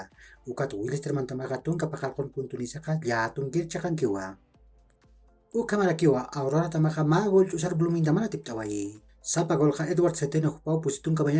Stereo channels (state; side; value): identical; both; correlation 1.00